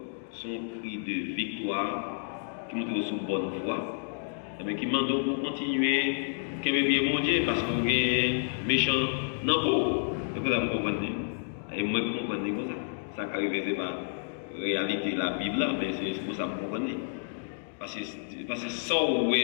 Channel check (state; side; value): silent; right; digital silence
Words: son cri de victoire qui montre sous bonne voie, mais qui demande pour continuer, qu'il ait bien mon Dieu, parce qu'on est méchant dans le corps. C'est pour ça que vous comprenez. Et moi, je comprends comme ça. Ça arrive, c'est pas réalité la Bible, mais c'est pour ça que vous comprenez. Parce que sans où